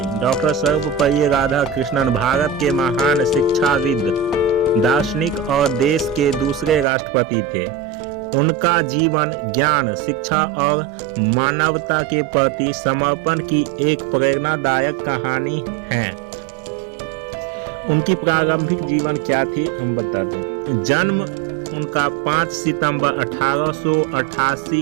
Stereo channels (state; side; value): drops out; left; at 6.9 s